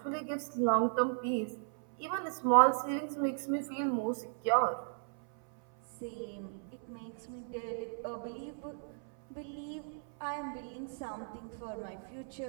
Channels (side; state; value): left; silent; 54 dB below the other